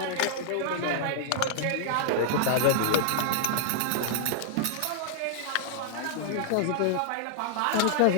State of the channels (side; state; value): both; different; correlation -0.01